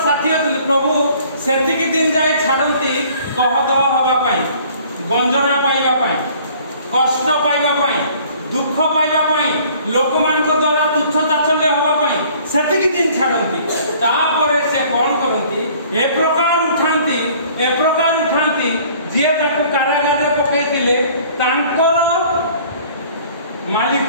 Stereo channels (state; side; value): inverted; both; correlation -0.54